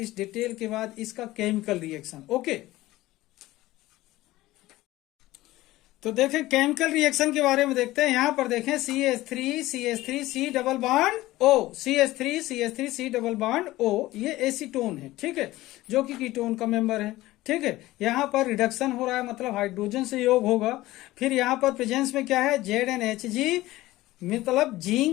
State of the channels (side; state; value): right; quieter; 17.3 dB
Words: डिटेल के बाद इसका केमिकल रिएक्शन। ओके, तो देखें केमिकल रिएक्शन के बारे में देखते हैं। यहां पर देखें CH3 C double bond O, CH3 C double bond O, ये एसीटोन है, ठीक है, जो कि कीटोन का मेंबर है। ठीक है, यहां पर रिडक्शन हो रहा है, मतलब हाइड्रोजन से योग होगा। फिर यहां पर प्रेजेंस में क्या है, ZnHg मतलब